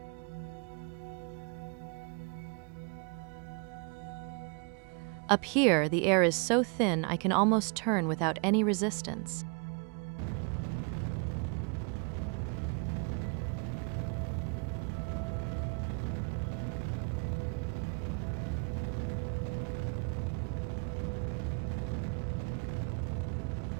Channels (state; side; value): quieter; left; 36.2 dB